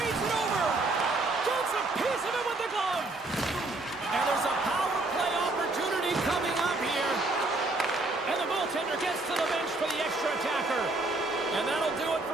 it over. Gets a piece of it with the glove. And there's a power play opportunity coming up here. And the goaltender gets to the bench for the extra attacker. And that'll do it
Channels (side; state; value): left; quieter; 3.0 dB